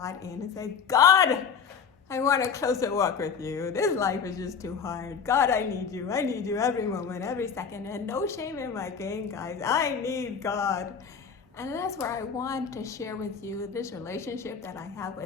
in and say, God, I want a closer walk with you. This life is just too hard. God, I need you. I need you every moment, every second. And no shame in my game, guys. I need God. And that's where I want to share with you this relationship that I have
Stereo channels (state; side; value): quieter; right; 6.4 dB